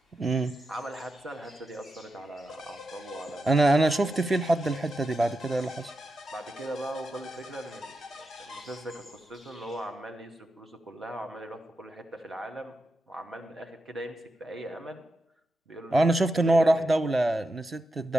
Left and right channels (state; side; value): normal; both; correlation 0.88